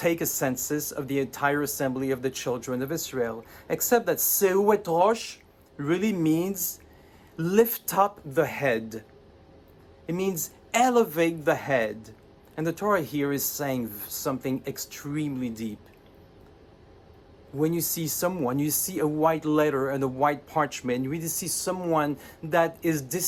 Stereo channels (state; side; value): identical; both; correlation 1.00